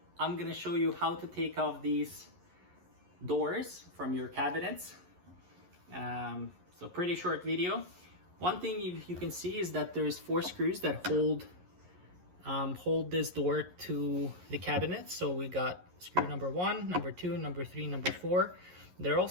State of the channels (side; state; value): left; late; 11 ms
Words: I'm gonna show you how to take off these doors from your cabinets. So pretty short video. One thing you can see is that there's 4 screws that hold this door to the cabinet. So we got screw number 1, number 2, number 3, number 4. They're